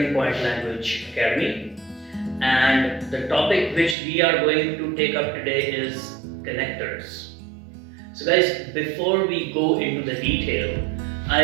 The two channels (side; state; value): left; drops out; at 4.0 s